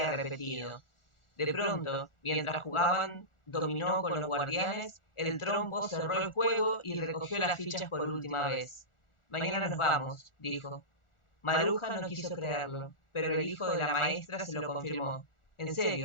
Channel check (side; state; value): right; late; 1.4 ms